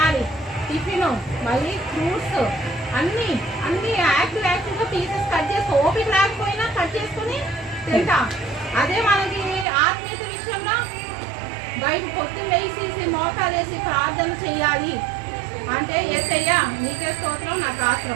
టిఫిన్ మళ్ళీ ఫ్రూట్స్ అన్నీ యాక్టివ్గా పీసెస్ కట్ చేసి ఓపిక లేకపోయినా కట్ చేసుకుని తింటాం. అదే మనకి ఆత్మీయత విషయంలో బయట పొద్దున్న వేసి మోకాలు వేసి ప్రార్థన చేయాలి అంటే యేసయ్యా నీకే స్తోత్రం నాకు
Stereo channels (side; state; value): left; drops out; at 9.7 s